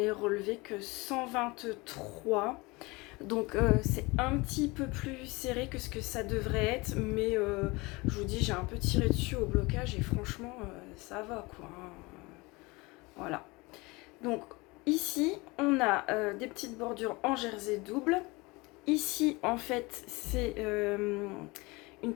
relevé que 123. Donc c'est un petit peu plus serré que ce que ça devrait être. Mais je vous dis, j'ai un peu tiré dessus au blocage et franchement, ça va quoi. Voilà. Donc ici, on a des petites bordures en jersey double. Ici, en fait, c'est une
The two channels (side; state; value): right; quieter; 24.3 dB